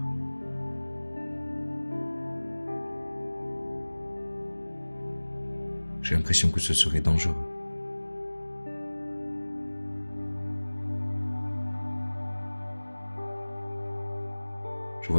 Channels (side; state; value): both; inverted; correlation -1.00